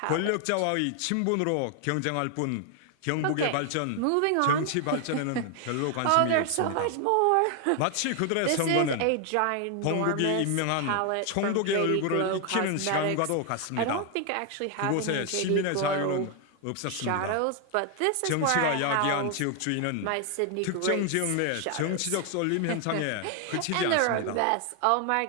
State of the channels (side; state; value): both; different; correlation 0.00